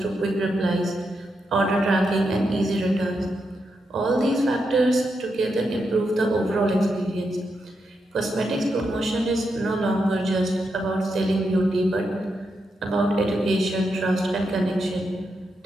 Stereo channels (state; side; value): normal; both; correlation 0.84